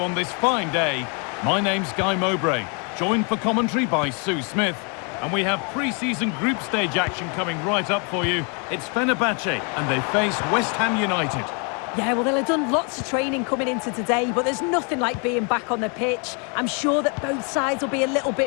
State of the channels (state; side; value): quieter; right; 36.1 dB